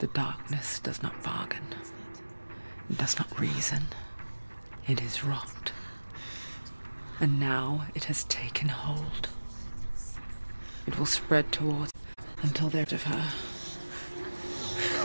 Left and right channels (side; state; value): both; inverted; correlation -1.00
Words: darkness does not bargain. It does not reason. It is wrought. And now it has taken hold. It will spread towards until they're of her.